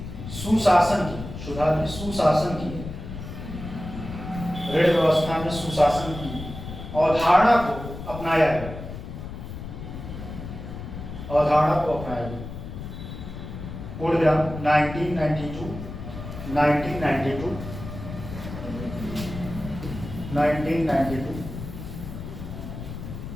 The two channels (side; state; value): left; noise; rumble, 9 dB below the sound